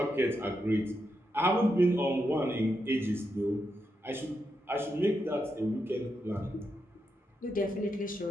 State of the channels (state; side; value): normal; both; correlation 0.84